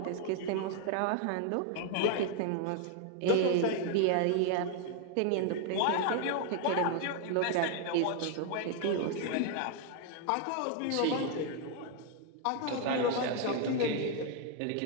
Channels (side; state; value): both; different; correlation 0.00